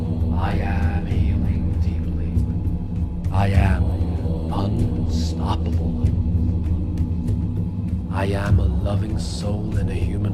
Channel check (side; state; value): both; identical; correlation 1.00